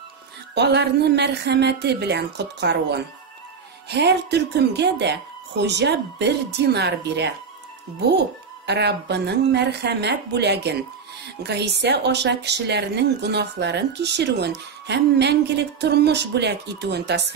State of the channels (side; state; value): left; quieter; 5.8 dB